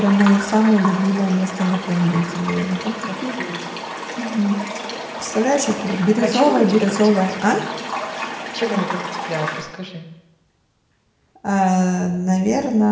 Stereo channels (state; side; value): identical; both; correlation 1.00